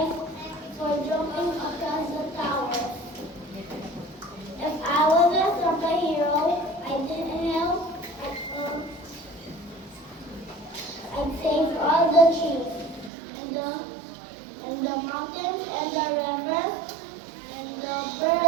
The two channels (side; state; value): left; drops out; at 13.1 s